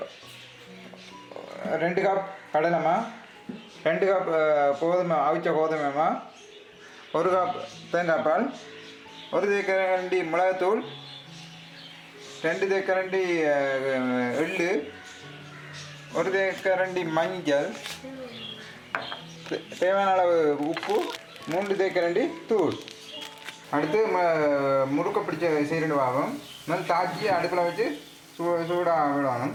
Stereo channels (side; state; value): both; identical; correlation 1.00